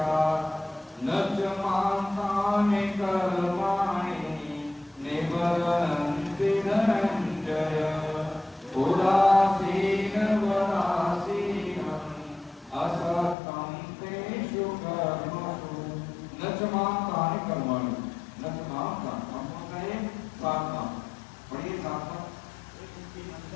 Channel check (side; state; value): right; drops out; at 13.4 s